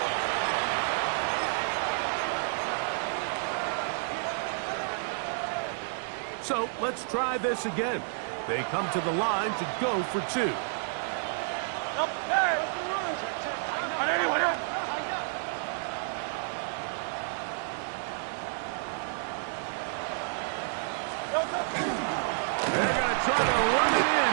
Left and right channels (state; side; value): silent; left; digital silence